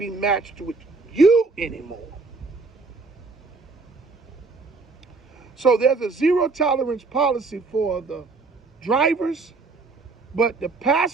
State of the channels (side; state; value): left; quieter; 3.9 dB